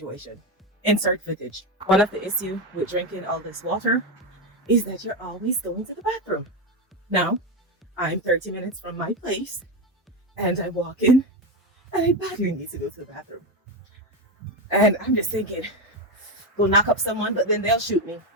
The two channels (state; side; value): normal; both; correlation 0.12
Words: Insert footage. One of the issue with drinking all this water is that you're always going to the bathroom. Now, I'm 30 minutes from my place and I walk in and I badly need to go to the bathroom. And I'm just thinking, go knock up someone, but then they'll shoot me.